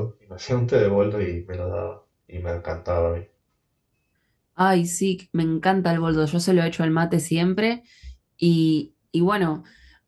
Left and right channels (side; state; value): both; identical; correlation 1.00